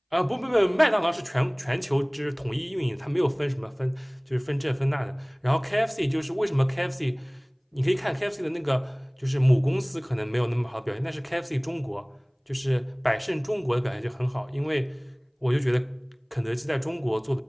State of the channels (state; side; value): identical; both; correlation 1.00